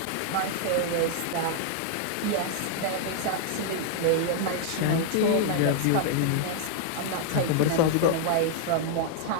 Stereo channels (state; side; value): different; both; correlation 0.00